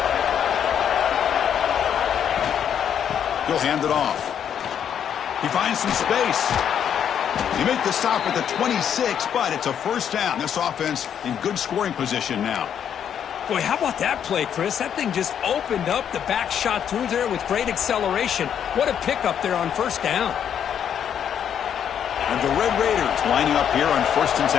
He'll hand it off. He finds some space. He made the stop at the 26, but it's a first down. This offense in good scoring position now. Boy, how about that play, Chris? That thing just opened up. The back shot through there with great acceleration. What a pickup there on first down. And the Red Raiders lining up here on first and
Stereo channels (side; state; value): right; quieter; 8.8 dB